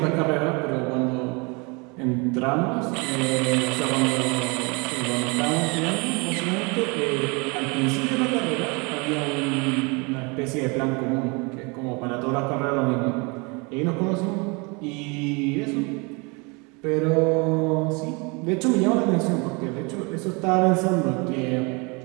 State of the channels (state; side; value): quieter; left; 29.6 dB